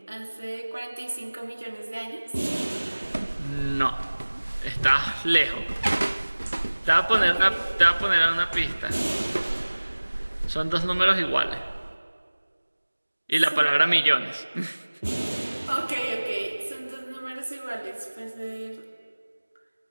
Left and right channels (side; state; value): both; inverted; correlation -1.00